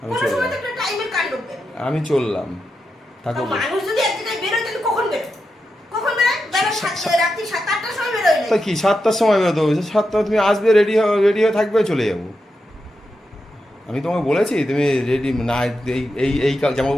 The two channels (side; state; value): both; normal; correlation 0.87